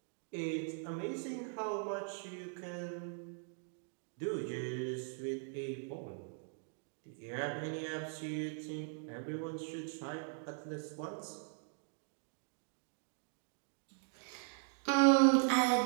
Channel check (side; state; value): left; silent; 51 dB below the other